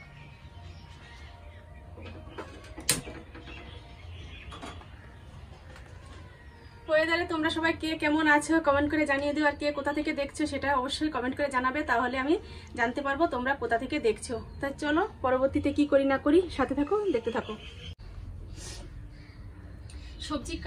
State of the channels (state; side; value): identical; both; correlation 1.00